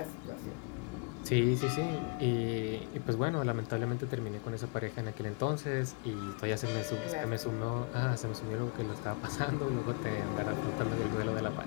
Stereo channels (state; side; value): quieter; right; 32.2 dB